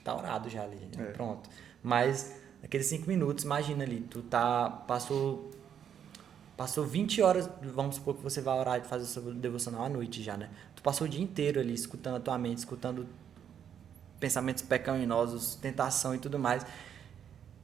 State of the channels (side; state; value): left; quieter; 8.7 dB